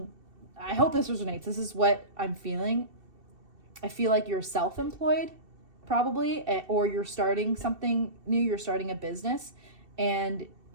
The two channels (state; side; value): late; left; 2.7 ms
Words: I hope this resonates. This is what I'm feeling. I feel like you're self-employed probably, or you're starting something new. You're starting a business, and